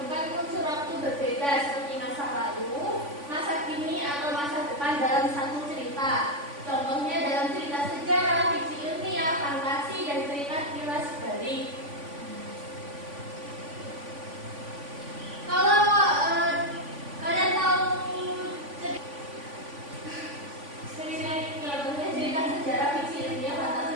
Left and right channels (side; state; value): left; late; 3.5 ms